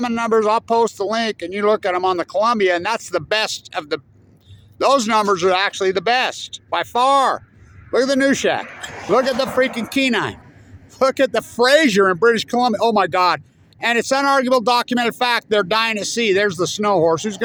numbers, I'll post the link and you look at them on the Columbia, and that's the best of the, those numbers are actually the best by far. Look at the New Shack. Look at the freaking Kenai. Look at the Fraser in British Columbia. Oh my God. And it's unarguable documented fact they're dying at sea. There's the snow horse. Who's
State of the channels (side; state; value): both; identical; correlation 1.00